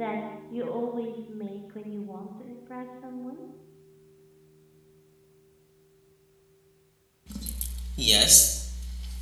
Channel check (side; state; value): both; identical; correlation 1.00